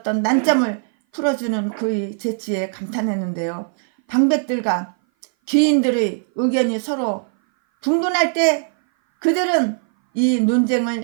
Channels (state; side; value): silent; left; 59 dB below the other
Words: 난점을 풀어주는 그의 재치에 감탄했는데요. 방백들과 귀인들의 의견이 서로 분분할 때 그들은 이